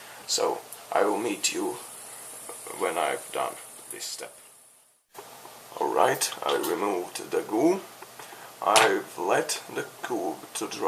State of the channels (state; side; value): identical; both; correlation 1.00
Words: So I will meet you when I've done this step. Alright, I removed the glue. I've let the cube to